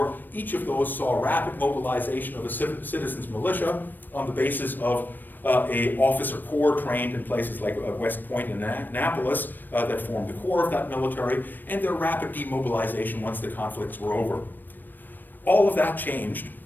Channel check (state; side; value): late; right; 0.091 ms